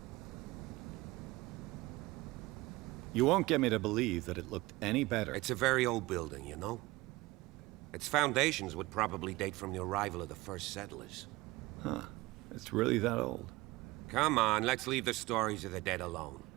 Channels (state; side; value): quieter; left; 20.4 dB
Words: You won't get me to believe that it looked any better. It's a very old building, you know? Its foundations would probably date from the arrival of the first settlers. Huh. It's really that old. Come on, let's leave the stories of the dead alone.